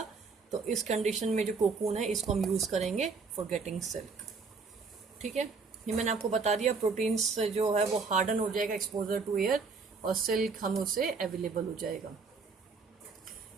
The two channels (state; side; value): quieter; left; 4.7 dB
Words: तो इस कंडीशन में जो कोकून है इसको हम यूज करेंगे फॉर गेटिंग सिल्क. ठीक है, ये मैंने आपको बता दिया. प्रोटीन्स जो है वो हार्डन हो जाएगा एक्सपोजर टू एयर, और सिल्क हम उसे अवेलेबल हो जाएगा.